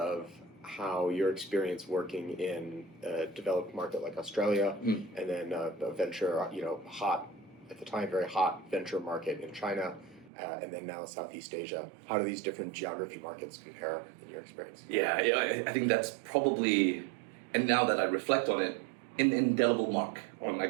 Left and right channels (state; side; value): drops out; left; at 10.3 s